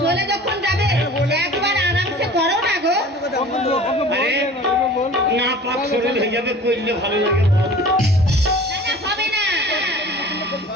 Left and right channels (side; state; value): both; normal; correlation 0.43